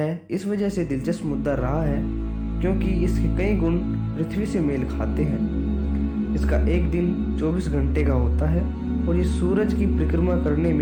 इस वजह से दिलचस्प मुद्दा रहा है क्योंकि इसके कई गुण पृथ्वी से मेल खाते हैं। इसका एक दिन 24 घंटे का होता है और ये सूरज की परिक्रमा करने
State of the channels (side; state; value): both; identical; correlation 1.00